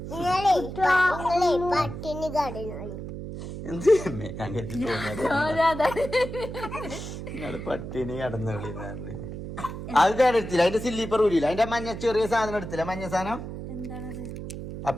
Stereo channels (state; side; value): noise; right; hum, 8 dB below the sound